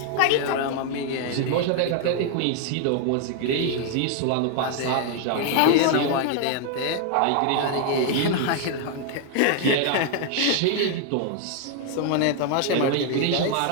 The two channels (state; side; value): different; both; correlation 0.00